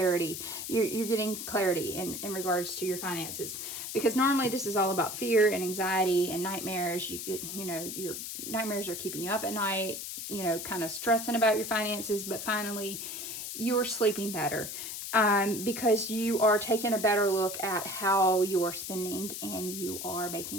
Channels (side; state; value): left; noise; hiss, 7 dB below the sound